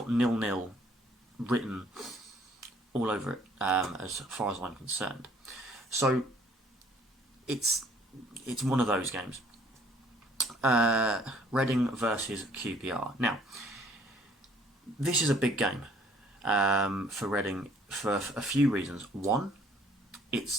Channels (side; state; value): both; normal; correlation 0.60